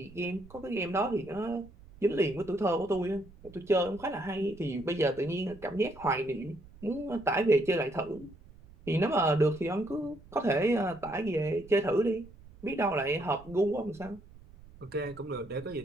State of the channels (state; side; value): noise; right; rumble, 21 dB below the sound